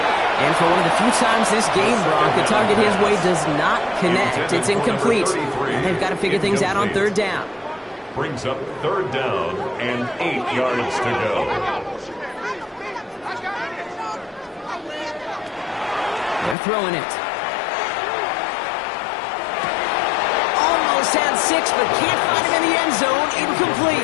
And for one of the few times this game, Brock, the target his way does not connect. It's incomplete. And they've got to figure things out on 3rd down. Brings up 3rd down and 8 yards to go. They're throwing it. Almost had 6, but can't find him in the end zone. Incomplete.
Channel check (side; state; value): right; drops out; at 16.6 s